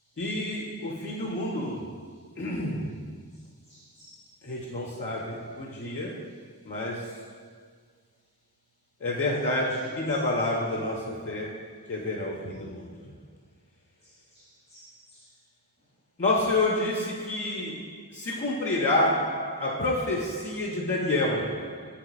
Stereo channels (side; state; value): both; normal; correlation -0.06